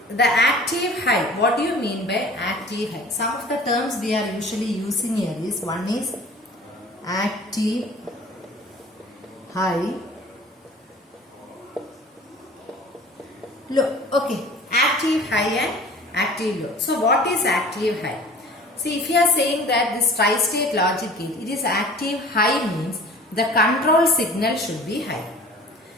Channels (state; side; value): normal; both; correlation 0.45